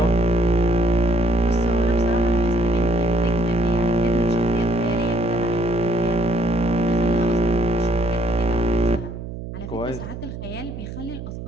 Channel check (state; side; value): noise; right; hum, 9 dB below the sound